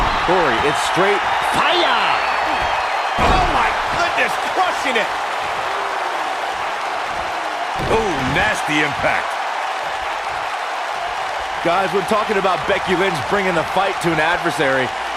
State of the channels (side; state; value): both; identical; correlation 1.00